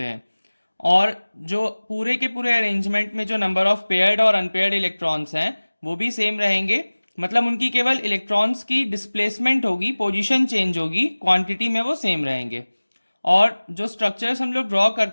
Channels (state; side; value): inverted; both; correlation -1.00